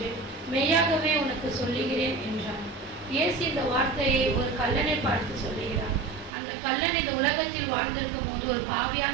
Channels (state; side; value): drops out; left; at 6.3 s